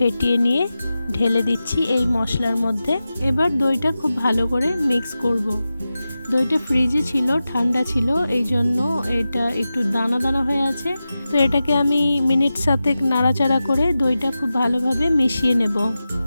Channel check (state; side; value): inverted; both; correlation -0.93